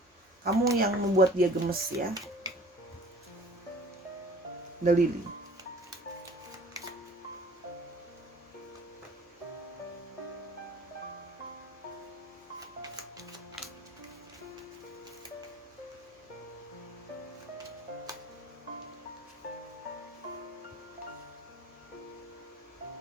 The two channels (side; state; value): both; normal; correlation 0.48